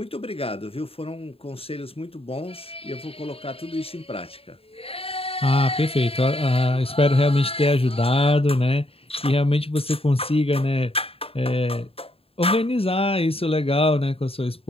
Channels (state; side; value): late; right; 0.28 ms